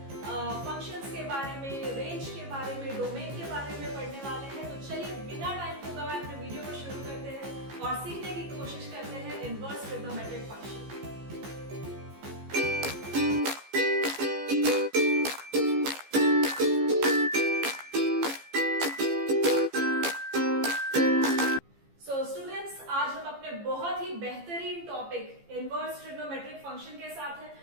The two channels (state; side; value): late; left; 15 ms